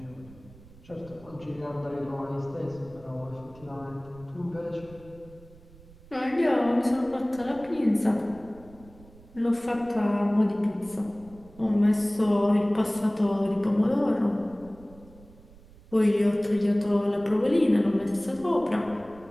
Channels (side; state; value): right; noise; rumble, 22 dB below the sound